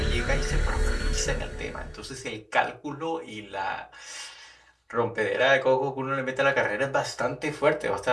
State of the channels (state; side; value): identical; both; correlation 1.00